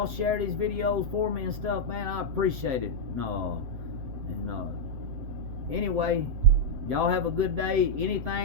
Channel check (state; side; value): late; left; 7.7 ms